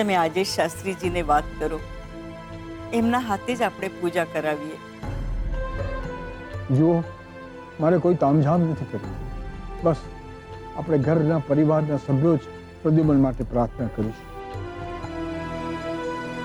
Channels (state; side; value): identical; both; correlation 1.00